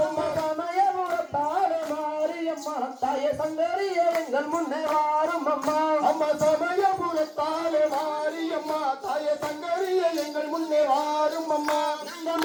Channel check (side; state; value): both; identical; correlation 1.00